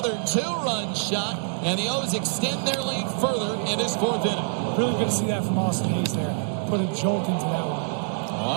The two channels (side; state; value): left; silent; digital silence